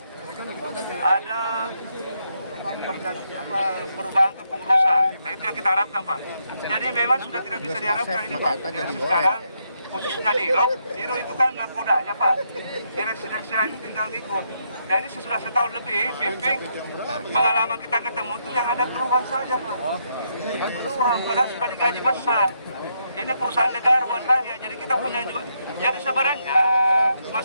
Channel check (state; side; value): inverted; both; correlation -0.78